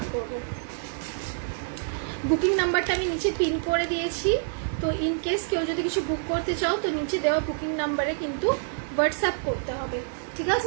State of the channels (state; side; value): silent; left; digital silence